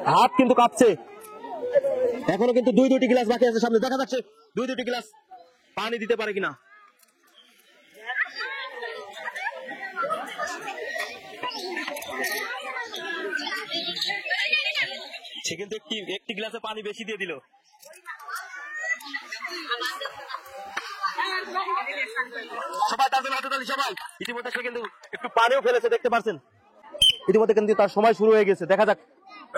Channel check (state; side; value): identical; both; correlation 1.00